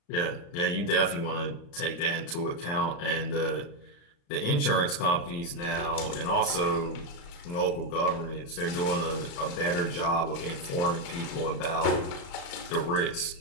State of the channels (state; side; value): late; right; 35 ms